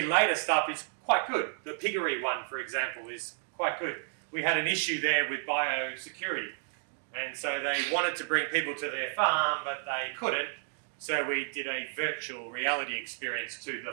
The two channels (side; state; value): left; silent; digital silence